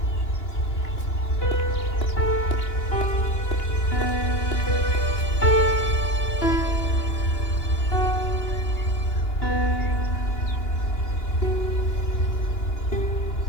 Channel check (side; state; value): right; late; 2.9 ms